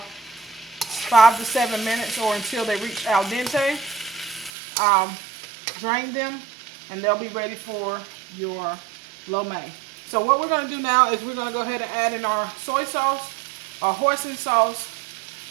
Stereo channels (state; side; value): drops out; left; at 4.5 s